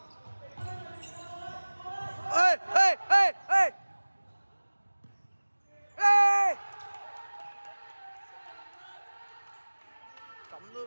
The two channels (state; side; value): inverted; both; correlation -1.00